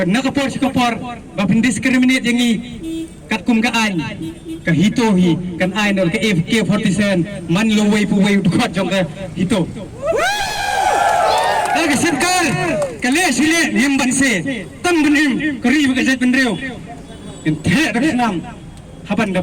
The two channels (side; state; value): both; identical; correlation 1.00